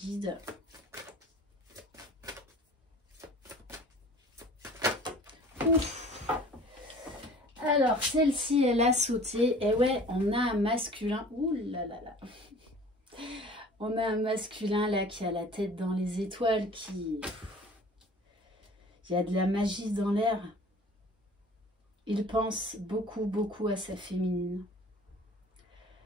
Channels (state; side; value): normal; both; correlation 0.46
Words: Ouf. Alors, celle-ci, elle a sauté. Et ouais, on a un masculin. Ouh là là là. On a un masculin là qui a la tête dans les étoiles, qui... Il y a de la magie dans l'air. Il pense beaucoup, beaucoup à sa féminine.